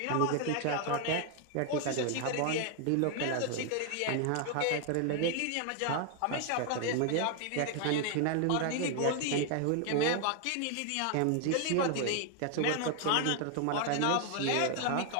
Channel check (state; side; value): different; both; correlation 0.00